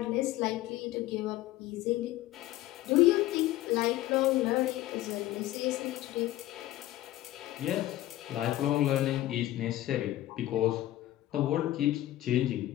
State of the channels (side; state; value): right; quieter; 15.3 dB